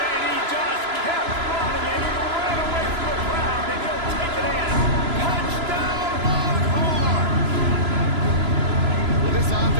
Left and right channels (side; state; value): left; late; 3.0 ms